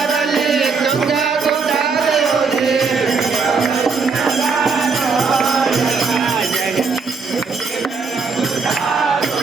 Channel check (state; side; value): quieter; left; 4.9 dB